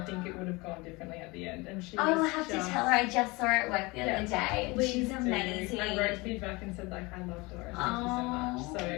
think it would have gone differently at the end. And she I will have to tell her. I just saw her at work the other day. She's amazing. I wrote feedback and said like, I love Doris. Thank you so much.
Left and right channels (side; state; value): right; quieter; 24.5 dB